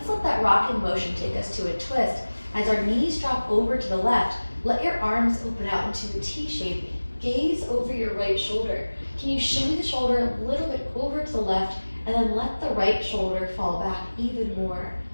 let that rocking motion take us to a twist. As our knees drop over to the left, let your arms open out into a T shape. Gaze over your right shoulder. Can you shimmy the shoulder a little bit over to the left, and then let the right shoulder fall back even more.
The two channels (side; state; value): both; inverted; correlation -1.00